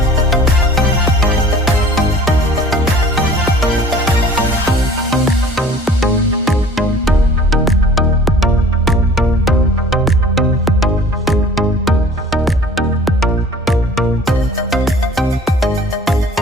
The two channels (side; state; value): both; normal; correlation 0.48